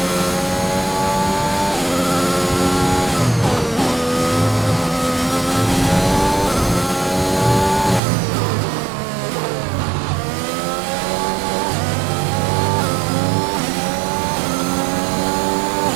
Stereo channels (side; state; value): left; drops out; at 8.0 s